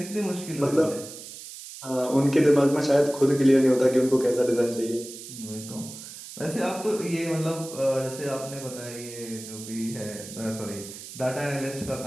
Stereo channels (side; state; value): right; noise; hiss, 13 dB below the sound